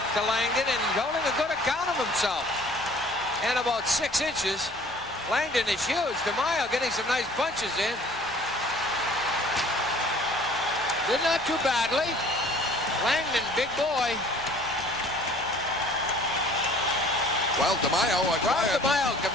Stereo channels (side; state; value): both; normal; correlation 0.52